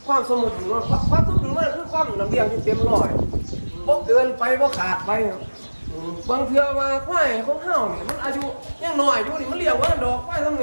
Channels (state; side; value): inverted; both; correlation -1.00